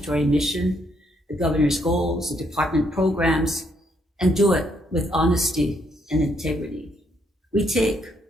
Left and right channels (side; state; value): both; normal; correlation 0.73